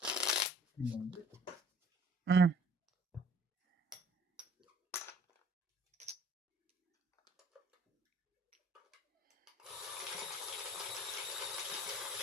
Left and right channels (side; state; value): both; normal; correlation 0.55